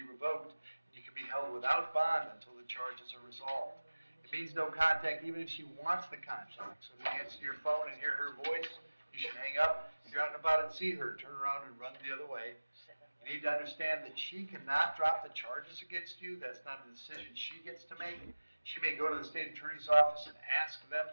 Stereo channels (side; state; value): both; inverted; correlation -1.00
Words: revoked, and you can be held without bond until the charges are resolved. It means no contact even if she wants the contact. So if you answer your phone and hear her voice, you should hang up. If you're out and about and see her, turn around and run the other way. You need to understand that she cannot drop the charges against you. That's not a decision she gets to make. She may go to the state attorney's office and ask them